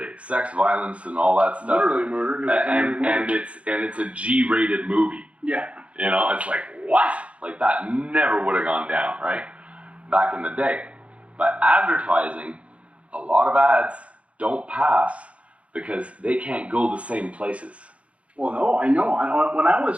sex, violence, and all that stuff. Literally murder. 'Cause it's And literally it's a G-rated movie. yeah. You know, it's like, what? Like that never would have gone down, right? Back in the day. But advertising, a lot of ads don't pass because they can't go the same places. Well, no, I know. When I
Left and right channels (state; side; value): late; left; 0.063 ms